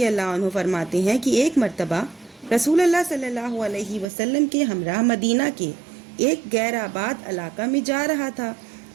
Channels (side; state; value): left; drops out; at 4.0 s